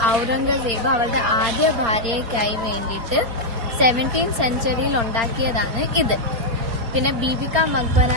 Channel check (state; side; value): late; left; 4.3 ms